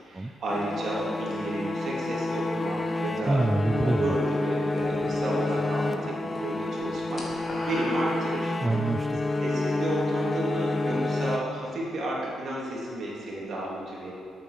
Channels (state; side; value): normal; both; correlation 0.87